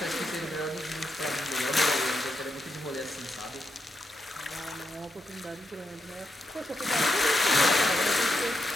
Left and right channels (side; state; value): both; normal; correlation 0.83